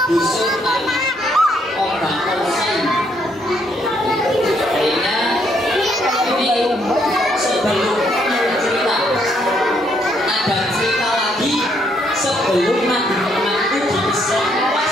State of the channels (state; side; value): normal; both; correlation 0.72